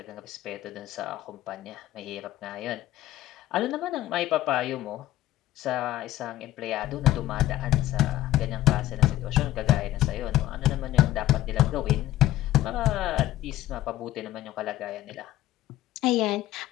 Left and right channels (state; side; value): quieter; right; 14.6 dB